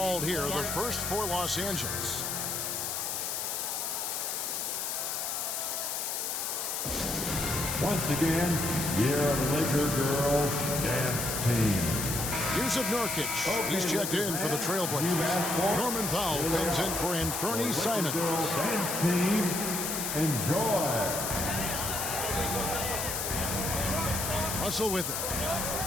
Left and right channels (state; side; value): noise; left; hiss, 2 dB below the sound